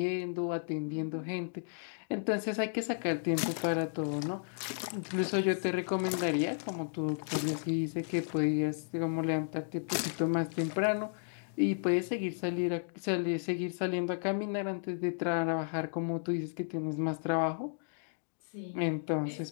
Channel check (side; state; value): right; silent; digital silence